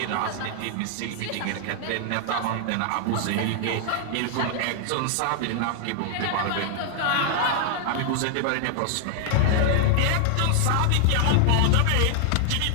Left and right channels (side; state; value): both; different; correlation 0.00